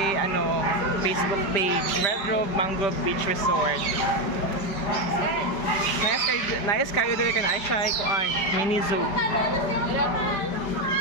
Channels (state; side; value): late; right; 5.1 ms